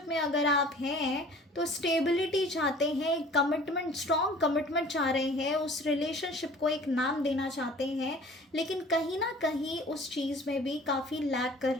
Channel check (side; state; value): both; normal; correlation 0.48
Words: में अगर आप हैं तो स्टेबिलिटी चाहते हैं, एक कमिटमेंट, स्ट्रॉन्ग कमिटमेंट चाह रहे हैं, उस रिलेशनशिप को एक नाम देना चाहते हैं, लेकिन कहीं ना कहीं उस चीज़ में भी काफ़ी लैक कर